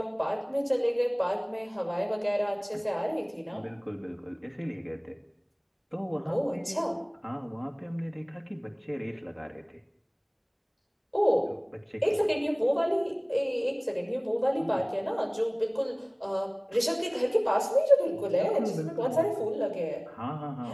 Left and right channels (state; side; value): identical; both; correlation 1.00